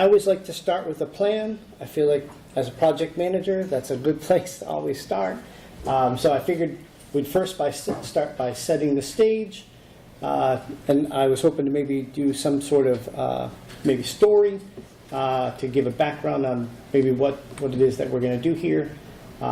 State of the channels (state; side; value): identical; both; correlation 1.00